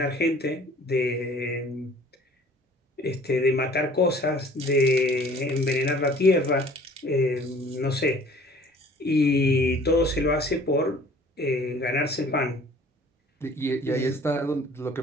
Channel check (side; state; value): both; normal; correlation 0.51